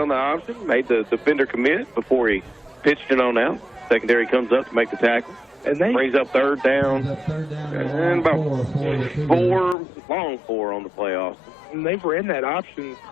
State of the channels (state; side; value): drops out; right; at 9.8 s